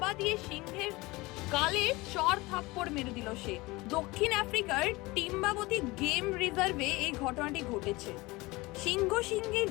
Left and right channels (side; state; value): right; quieter; 22.0 dB